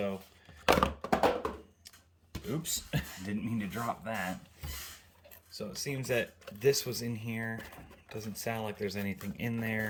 oops, didn't mean to drop that. So it seems that this was in here. Doesn't sound like there's anything in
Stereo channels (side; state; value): both; identical; correlation 1.00